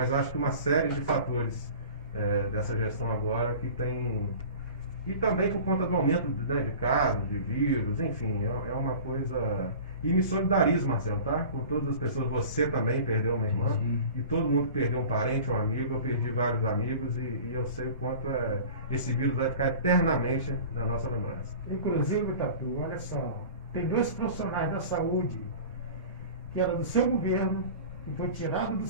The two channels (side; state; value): both; inverted; correlation -0.40